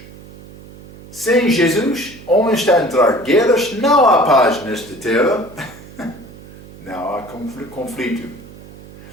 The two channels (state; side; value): noise; right; hum, 19 dB below the sound